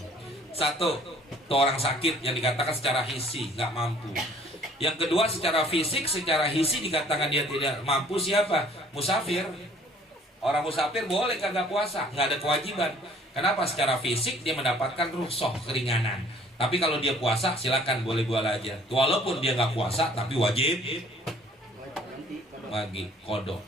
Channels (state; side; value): normal; both; correlation 0.56